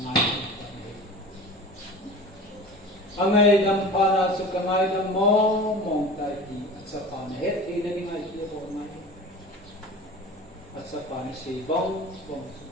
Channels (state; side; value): normal; both; correlation 0.37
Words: Ang ngayon para sa kangayon mo mong tayo at sa panahit hindi nga ito po ngayon. At sa panisi bong